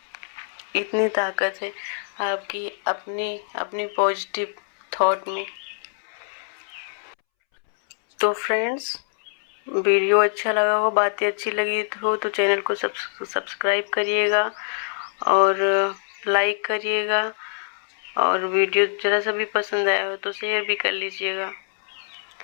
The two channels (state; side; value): silent; right; 62 dB below the other